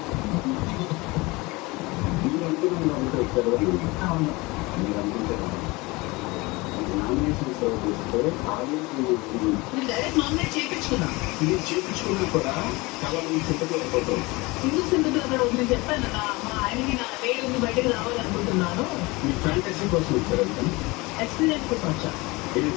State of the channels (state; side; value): quieter; right; 23.7 dB